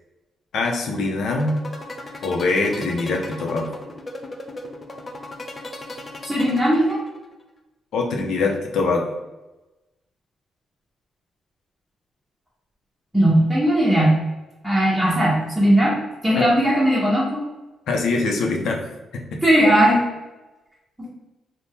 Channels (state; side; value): normal; both; correlation 0.83